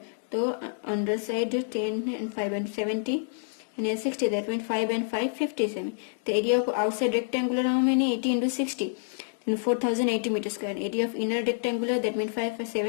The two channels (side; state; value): right; silent; digital silence